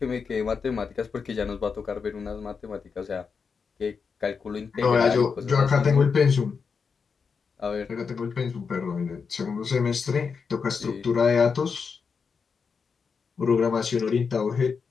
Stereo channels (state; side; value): quieter; right; 5.6 dB